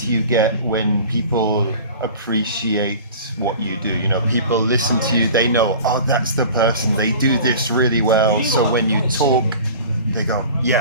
you get when people appreciate what you do, you know, people listen to you, they know, oh, that's the person, they do this really well. So when you talk, they go,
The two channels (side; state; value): both; inverted; correlation -0.40